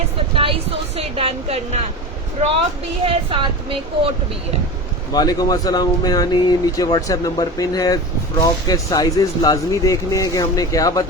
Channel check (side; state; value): both; normal; correlation 0.28